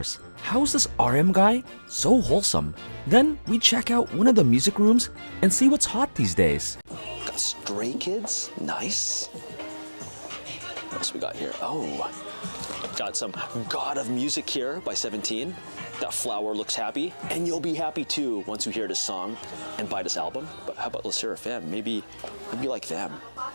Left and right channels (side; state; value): both; inverted; correlation -1.00